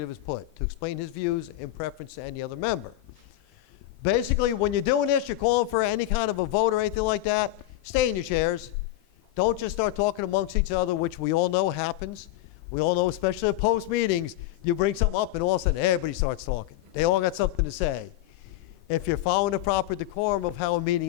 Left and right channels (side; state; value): right; quieter; 14.7 dB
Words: is put, to explain his views in preference to any other member. Basically, when you're doing this, you're calling for any kind of a vote or anything like that, stay in your chairs. Don't just start talking amongst each other, which we all know happens. We all know, especially at post meetings, you bring something up and all of a sudden everybody starts talking. They all got something to say. If you're following the proper decorum of how a meeting